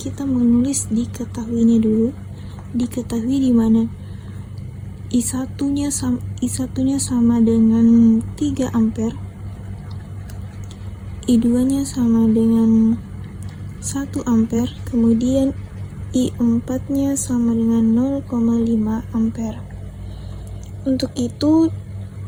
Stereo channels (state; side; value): identical; both; correlation 1.00